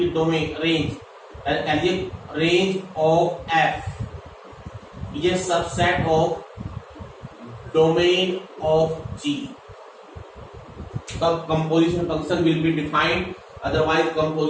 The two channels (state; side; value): identical; both; correlation 1.00